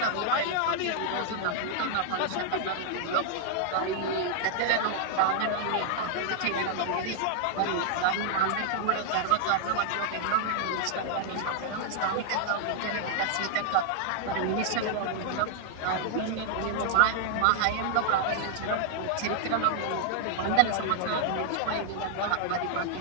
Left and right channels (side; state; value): both; different; correlation -0.01